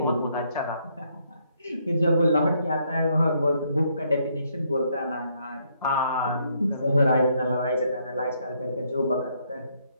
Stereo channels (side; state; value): both; inverted; correlation -0.72